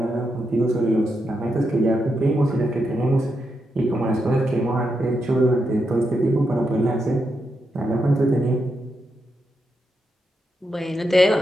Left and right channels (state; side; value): normal; both; correlation 0.84